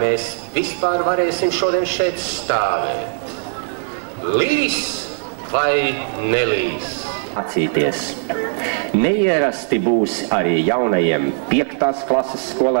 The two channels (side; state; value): left; silent; 66 dB below the other